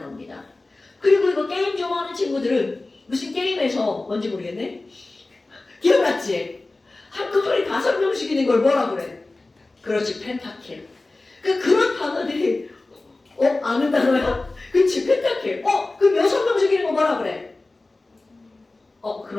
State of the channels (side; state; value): right; quieter; 3.2 dB